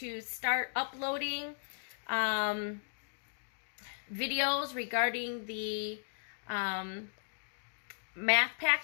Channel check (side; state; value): right; silent; digital silence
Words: start uploading videos regarding the math